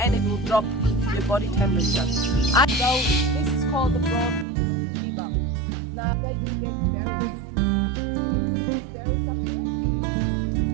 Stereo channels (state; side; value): drops out; left; at 4.5 s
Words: it will drop your body temperature. So this is called the broad fever. Now they do get berries. These berries up here,